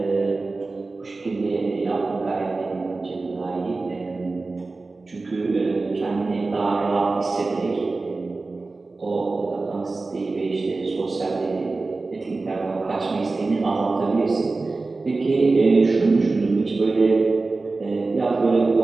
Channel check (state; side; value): quieter; left; 3.6 dB